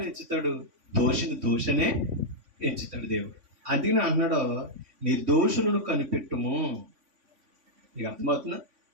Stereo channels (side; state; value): left; late; 3.5 ms